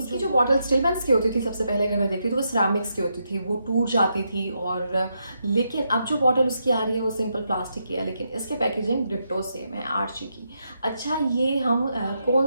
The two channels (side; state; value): both; inverted; correlation -0.82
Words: जो बॉटल स्टिलमेंस की होती थी सबसे पहले अगर मैं देखती तो वो सिरामिक्स की होती थी, वो टूट जाती थी। और लेकिन अब जो बॉटल उसकी आ रही है वो सिंपल प्लास्टिक की है, लेकिन इसके पैकेजिंग डिट्टो सेम है आर्ची की। अच्छा, ये हम